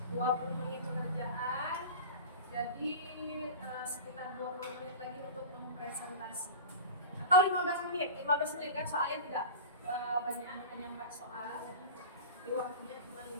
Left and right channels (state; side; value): inverted; both; correlation -0.32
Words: 20 menit pengerjaan, jadi sekitar 20 menit lagi untuk mempresentasi. Atau 15 menit, 15 menit kan soalnya tidak banyak, hanya 4 soal. Di waktunya cuma